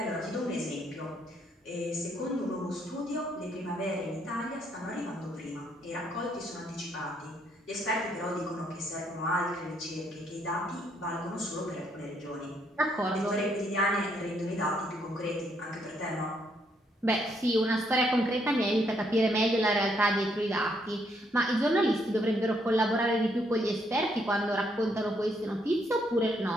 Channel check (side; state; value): both; normal; correlation 0.72